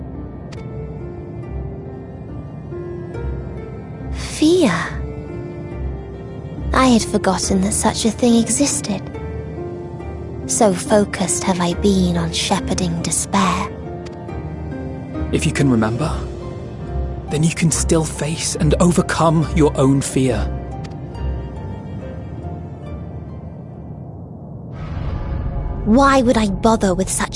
Fear? I had forgotten that such a thing existed. So focused have I been on shepherding despair. If you can remember, then you can still face and overcome your own fear. Why would I bother with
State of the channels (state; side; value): identical; both; correlation 1.00